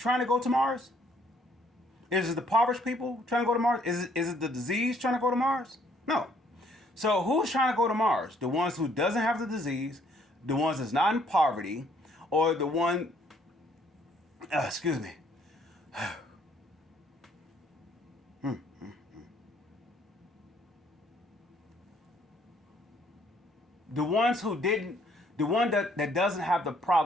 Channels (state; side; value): normal; both; correlation 0.65